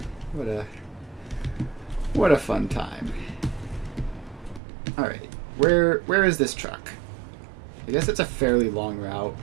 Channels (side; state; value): left; drops out; at 4.6 s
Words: what a fun time. All right, where is this truck? I guess it's a fairly long route,